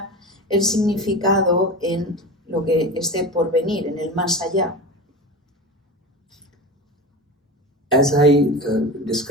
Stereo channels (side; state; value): both; normal; correlation 0.28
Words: el significado en lo que esté por venir, en el más allá. As I